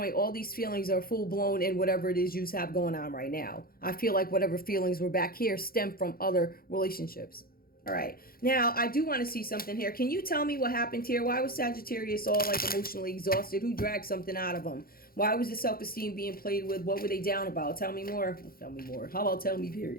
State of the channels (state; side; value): late; right; 0.43 ms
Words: all these feelings are full blown in whatever it is you have going on right now. I feel like whatever feelings were back here stem from other relationships. All right. Now, I do want to see something here. Can you tell me what happened here? Why was Sagittarius all like emotionally exhausted? Who dragged something out of them? Why was the self-esteem being played with? What were they down about? Tell me more. Tell me more. How about tell me,